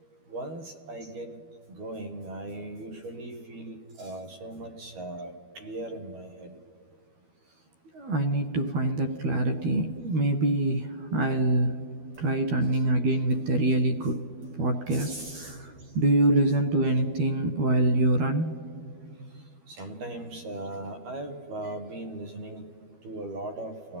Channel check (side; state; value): left; late; 12 ms